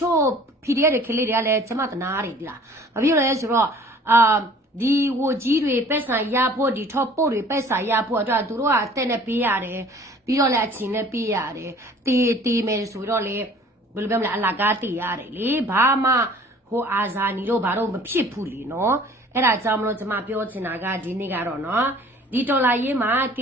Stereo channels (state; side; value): normal; both; correlation 0.51